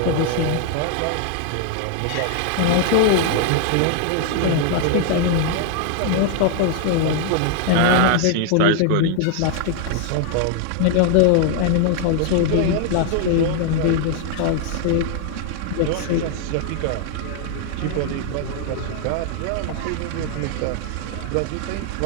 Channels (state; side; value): different; both; correlation 0.00